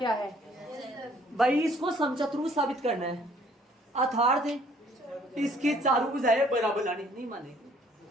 है भाई, इसको समचतुर्भुज साबित करना है। अर्थात इसकी चारों भुजाएं बराबर लानी, नहीं माने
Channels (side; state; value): both; normal; correlation 0.60